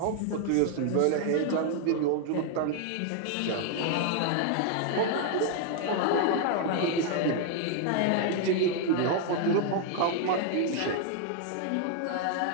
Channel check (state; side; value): different; both; correlation 0.00